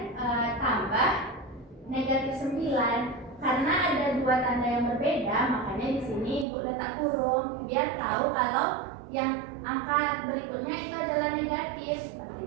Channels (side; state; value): left; drops out; at 6.5 s